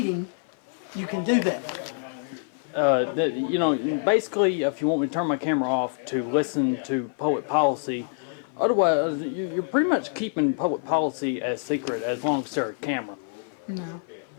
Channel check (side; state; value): right; silent; 56 dB below the other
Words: you can do that. You know, basically, if you want me to turn my camera off to listen to public policy, otherwise, you're pretty much keeping public policy as secret as long as there's a camera. No.